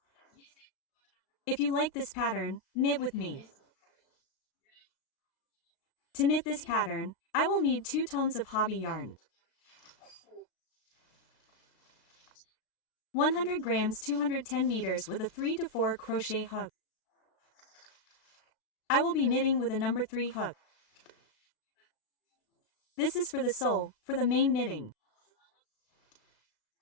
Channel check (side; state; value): right; late; 36 ms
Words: If you like this pattern, knit with me. To knit this pattern, I will need 2 tones of hobby yarn, 100 grams 210 meters with a 3 to 4 crochet hook. I will be knitting with a number 3 hook. This is for the sole, for the main knitting.